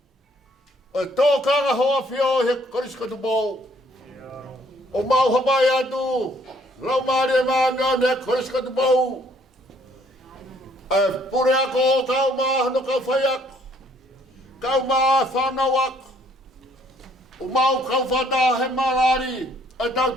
O tōkanga hoa whio he Kolisi ko Tupou. O mau hapai atu. Raumari e maanga ne Kolisi ko Tupou. E pure ako kau maa hano kau whaiak. Kau maa whanawak. O mau kau whata he malari. E tau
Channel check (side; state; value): both; normal; correlation 0.64